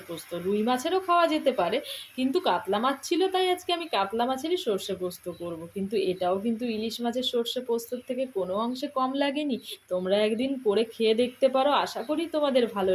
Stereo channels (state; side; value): identical; both; correlation 1.00